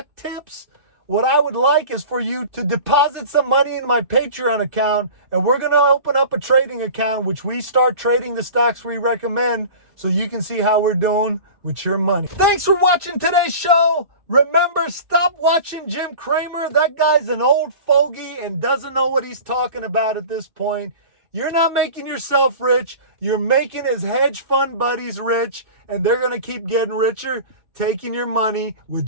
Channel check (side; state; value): left; late; 2.6 ms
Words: tips, what I would like is for you to deposit some money in my Patreon account, and we're going to open up a trading account, which we start trading the stocks we recommend, so you can see how we're doing with your money. Thanks for watching today's show. Remember, stop watching Jim Cramer. That guy's an old fogey and doesn't know what he's talking about at this point. You're not making yourself rich. You're making his hedge fund buddies rich, and they're going to keep getting richer, taking your money with